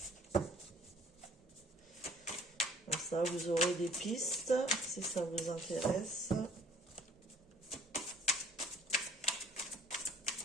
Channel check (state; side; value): normal; both; correlation 0.56